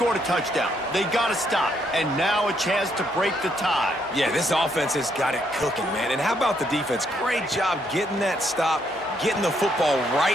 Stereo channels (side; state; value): both; normal; correlation 0.73